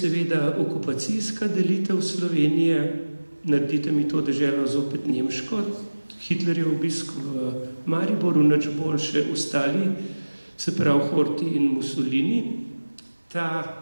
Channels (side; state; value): both; inverted; correlation -1.00